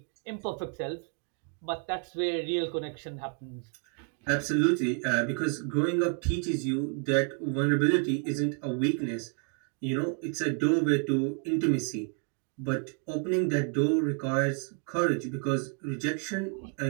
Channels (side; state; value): left; quieter; 39.9 dB